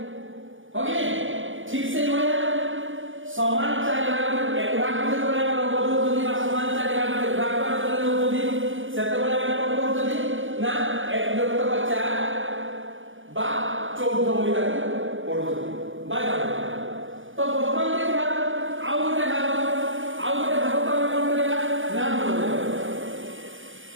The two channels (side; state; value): left; late; 0.57 ms